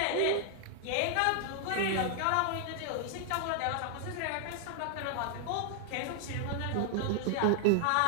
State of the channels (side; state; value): both; different; correlation 0.00